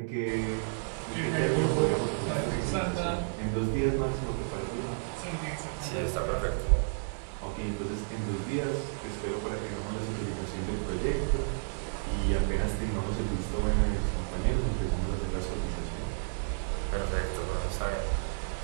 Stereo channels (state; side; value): silent; left; digital silence